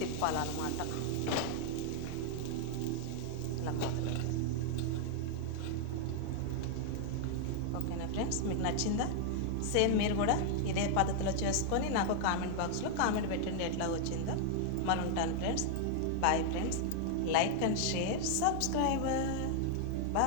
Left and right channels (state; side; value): different; both; correlation 0.00